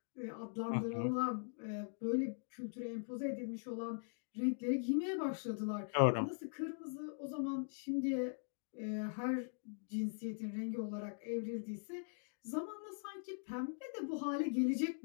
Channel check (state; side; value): silent; right; digital silence